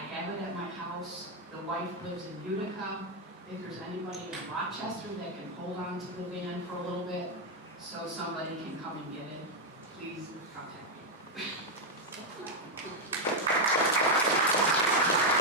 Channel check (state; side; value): normal; both; correlation 0.02